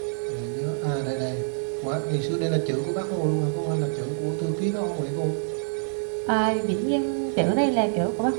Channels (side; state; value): left; silent; 55 dB below the other